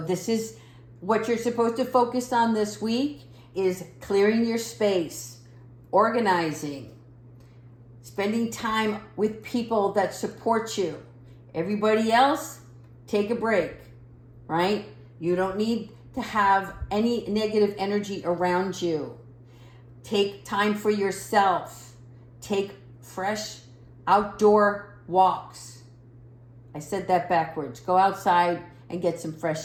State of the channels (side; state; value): both; identical; correlation 1.00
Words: is what you're supposed to focus on this week is clearing your space, organizing, spending time with people that support you. Everybody else, take a break, right? You don't need to have any negative energy around you. Take time for yourself. Take fresh outdoor walks. I said that backwards. Go outside and get some